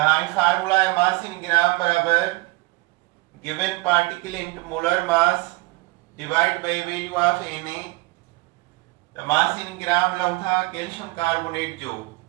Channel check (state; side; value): quieter; left; 23.6 dB